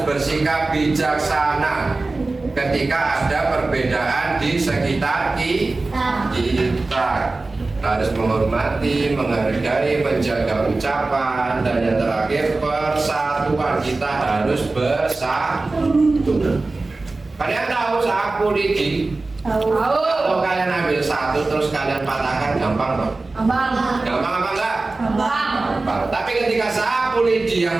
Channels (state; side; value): quieter; left; 3.4 dB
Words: bersikap bijaksana ketika ada perbedaan di sekitar kita. Harus menghormati, menghargai, menjaga ucapan, dan yang terakhir persatuan. Kita harus bersatu. Kalian tahu sapu lidi? Tahu. Kalau kalian ambil satu terus kalian patahkan, gampang dong? Gampang apa enggak? Gampang. Tapi ketika sapu lidi